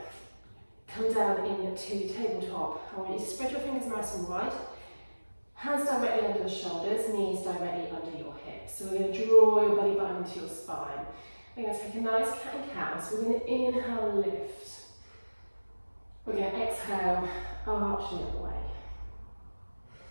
come down into tabletop. I want you to spread your fingers nice and wide. Hands directly under the shoulders, knees directly under your hips. So we're going to draw your belly button to your spine. We're going to take a nice cat and cow. So we're going to inhale, lift. We're going to exhale, arch the other way.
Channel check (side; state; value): both; inverted; correlation -1.00